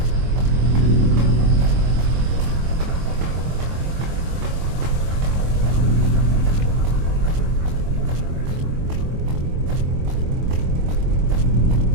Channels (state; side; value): late; left; 24 ms